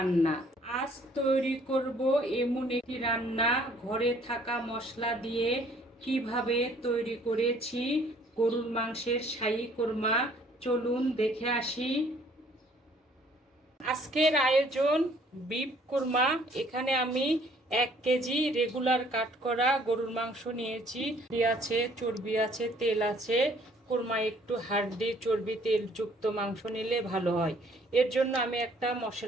আজ তৈরি করব এমন একটি রান্না, ঘরে থাকা মশলা দিয়ে কিভাবে তৈরি করেছি গরুর মাংসের শাহী কোরমা। চলুন দেখে আসি। আজকের আয়োজন বিফ কোরমা। এখানে আমি 1 কেজি রেগুলার কাট করা গরুর মাংস নিয়েছি। আছে, চর্বি আছে, তেল আছে। কোরমা একটু হাড্ডি চর্বি তেলযুক্ত মাংস নিলে ভালো হয়। এর জন্য আমি একটা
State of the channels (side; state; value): both; normal; correlation 0.60